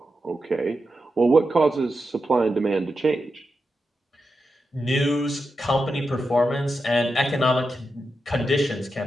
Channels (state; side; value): normal; both; correlation 0.88